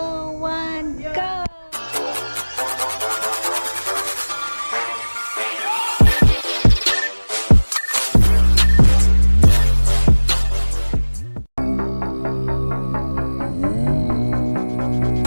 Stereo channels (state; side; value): inverted; both; correlation -1.00